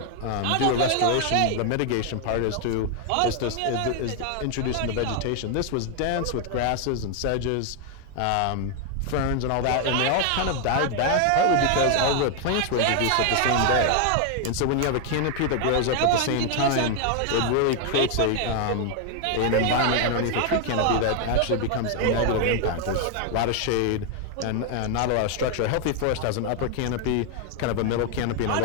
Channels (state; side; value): different; both; correlation 0.00